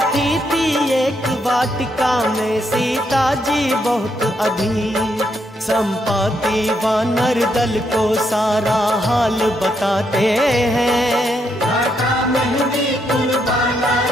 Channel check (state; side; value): normal; both; correlation 0.78